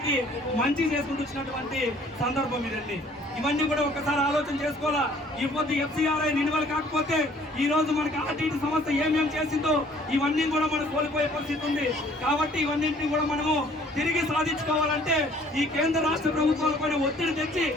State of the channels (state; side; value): normal; both; correlation 0.57